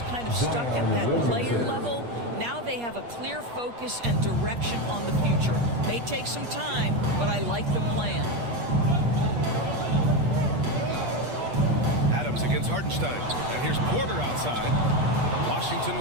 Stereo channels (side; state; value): left; late; 8.4 ms